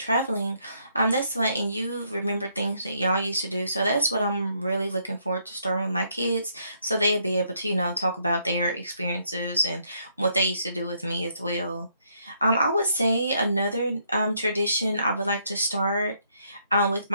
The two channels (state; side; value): inverted; both; correlation -0.72